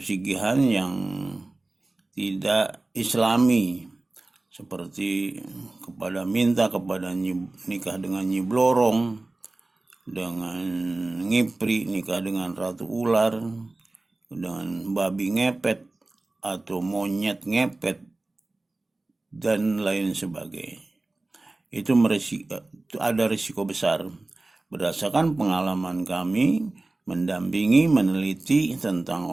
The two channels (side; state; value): left; quieter; 3.0 dB